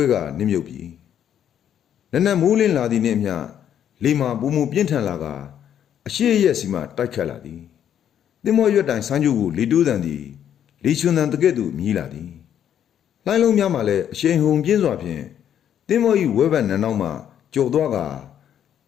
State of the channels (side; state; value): right; quieter; 9.7 dB